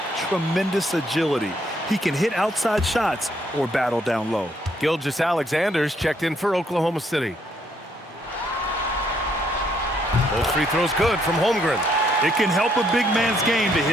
tremendous agility. He can hit outside shots or battle down low. Gilgeous-Alexander's checked in for Oklahoma City. Both free throws good from Holmgren. It can help a big man's game to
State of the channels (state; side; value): normal; both; correlation 0.71